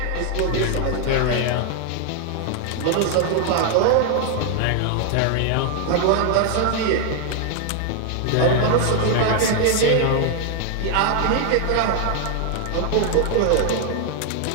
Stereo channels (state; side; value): different; both; correlation 0.00